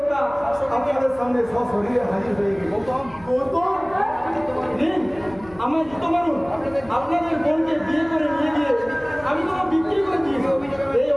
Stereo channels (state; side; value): noise; left; hum, 22 dB below the sound